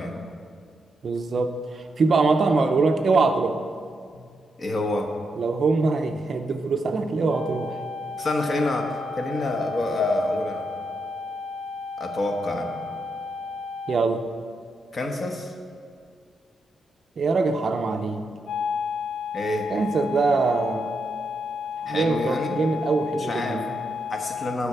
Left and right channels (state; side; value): normal; both; correlation 0.82